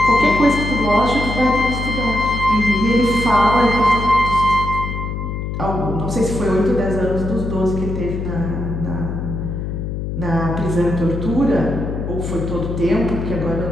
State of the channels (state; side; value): noise; left; hum, 4 dB below the sound